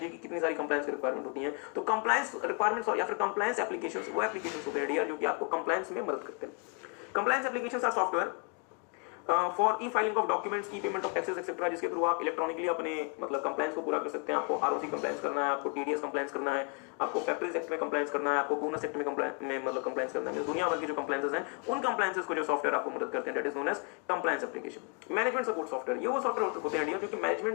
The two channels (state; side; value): quieter; right; 35.0 dB